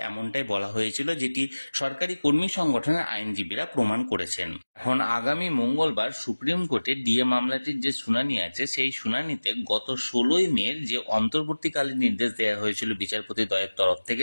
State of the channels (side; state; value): both; inverted; correlation -1.00